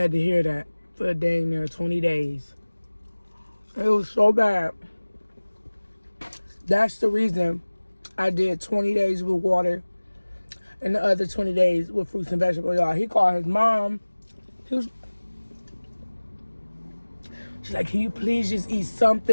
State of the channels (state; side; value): inverted; both; correlation -1.00